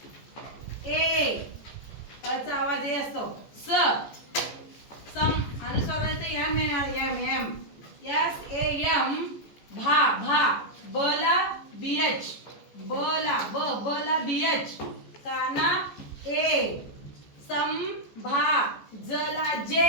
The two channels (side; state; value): right; late; 14 ms